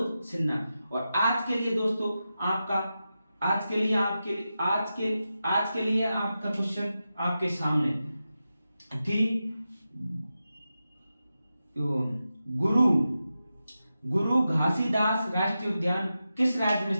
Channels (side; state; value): both; inverted; correlation -0.91